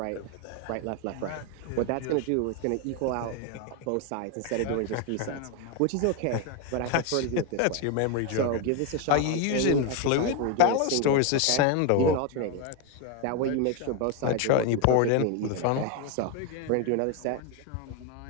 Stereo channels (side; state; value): both; different; correlation 0.01